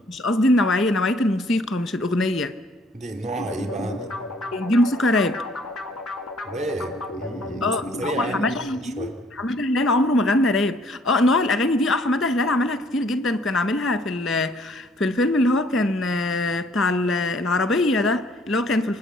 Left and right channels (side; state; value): both; normal; correlation 0.61